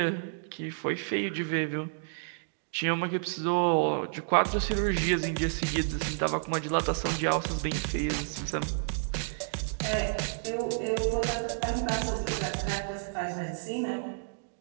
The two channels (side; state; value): left; silent; digital silence